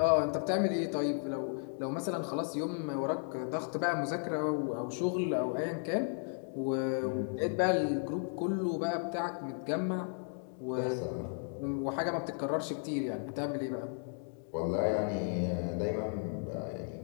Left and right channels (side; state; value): right; silent; 55 dB below the other